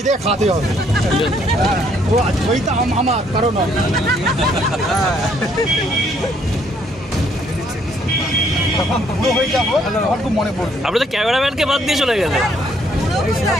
দিয়ে খাতে হবে। ও জয়টা আমার কারণ হয়ে যাবো আমার খুব মনে পড়বে। আপনি তো ক্যামেরাম্যানকে বাদ দিয়ে চলে গেলেন।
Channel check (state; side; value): normal; both; correlation 0.67